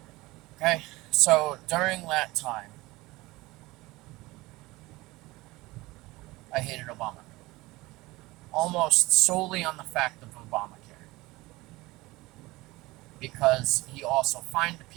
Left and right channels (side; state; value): left; quieter; 20.5 dB